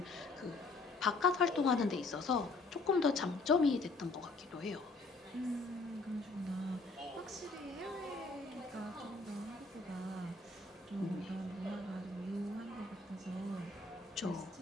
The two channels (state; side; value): quieter; right; 3.5 dB